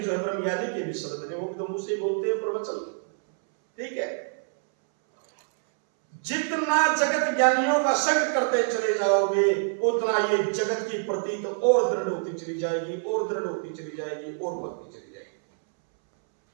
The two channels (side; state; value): left; silent; 61 dB below the other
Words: है ब्रह्म ज्ञानी के भी शब्द हैं, वो भी तो मुझसे बोलते हैं प्रवचन। ठीक है, जितना जगत ज्ञानियों का संग करते चले जाओगे उतना ये जगत की प्रतीत और दृढ़ होती चली जाएगी, और दृढ़ होती चली जाएगी, और बढ़ती चली जाएगी।